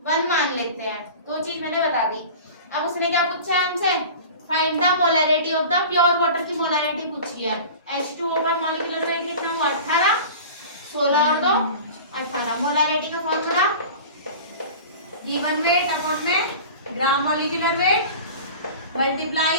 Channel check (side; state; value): both; inverted; correlation -0.37